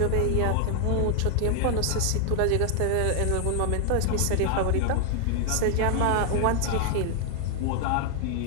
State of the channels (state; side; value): different; both; correlation 0.00